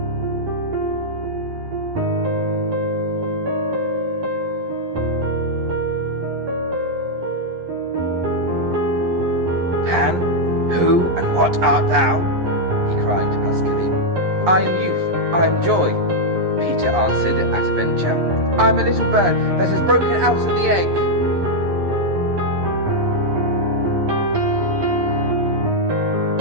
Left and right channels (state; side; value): late; left; 11 ms